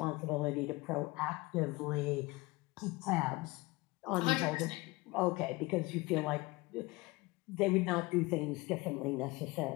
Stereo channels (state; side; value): quieter; right; 22.7 dB